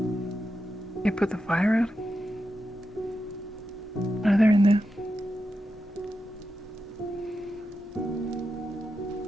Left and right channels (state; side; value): normal; both; correlation 0.88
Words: You put the fire out? Are they in there?